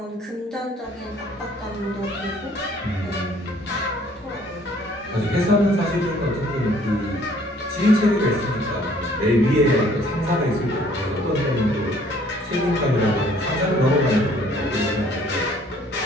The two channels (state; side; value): normal; both; correlation 0.59